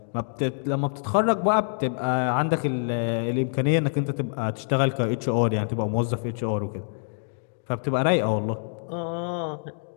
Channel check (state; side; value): silent; right; 61 dB below the other